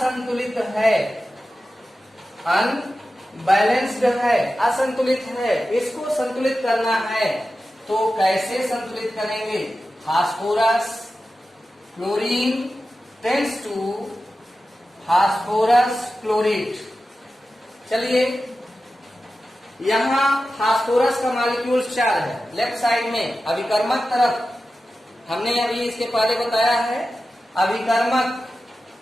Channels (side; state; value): both; normal; correlation 0.93